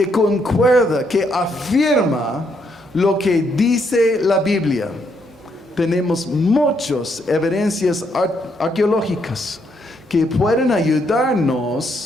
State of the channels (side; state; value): both; normal; correlation 0.74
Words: concuerda, que afirma lo que dice la Biblia. Tenemos muchas evidencias arqueológicas que pueden